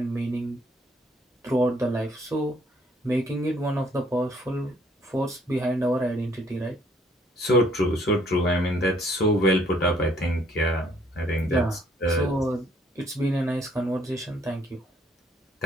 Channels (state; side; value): normal; both; correlation 0.64